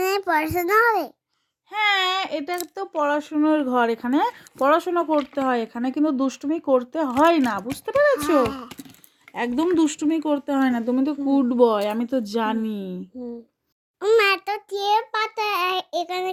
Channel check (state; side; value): identical; both; correlation 1.00